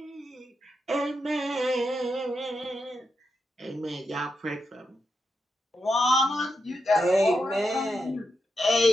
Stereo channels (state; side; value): normal; both; correlation 0.85